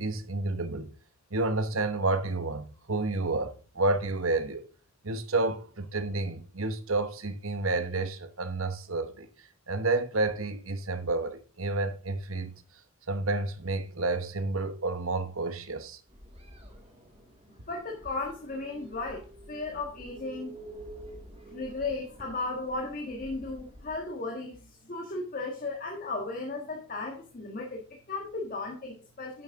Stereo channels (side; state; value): both; normal; correlation -0.04